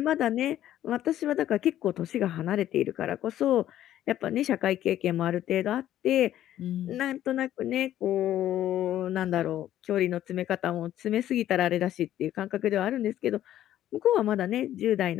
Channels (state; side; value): quieter; right; 12.4 dB